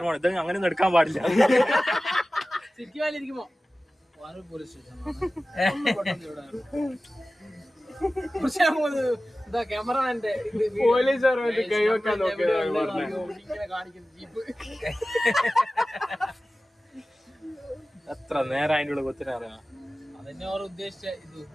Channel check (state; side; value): normal; both; correlation 0.96